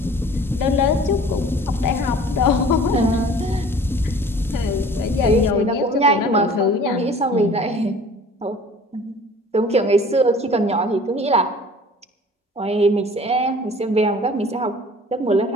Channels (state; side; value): normal; both; correlation 0.47